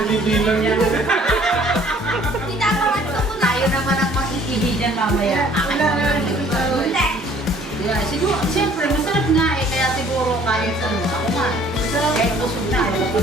Pinipilan iihi mo. dyan. Tayo naman ang mag-iihi dyan mamaya. Akin naman. Yeah, siguro, siyempre, masarap nga eh, kaya siguro kahit ano, ako nga, kahit busog na, ayaw ko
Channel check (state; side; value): normal; both; correlation 0.56